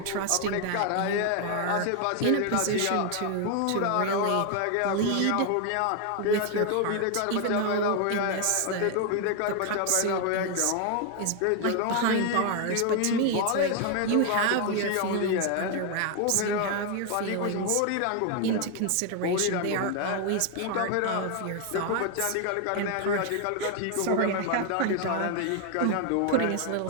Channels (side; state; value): both; different; correlation 0.01